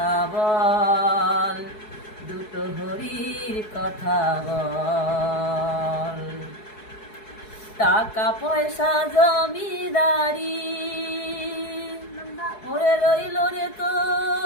বল, দুটো হরির কথা বল। টাকা পয়সা জমিদারি ওরে রইল রে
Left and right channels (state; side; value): late; right; 4.7 ms